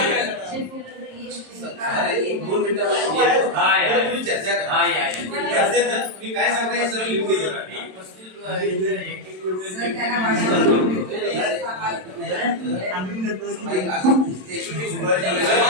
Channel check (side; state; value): left; late; 27 ms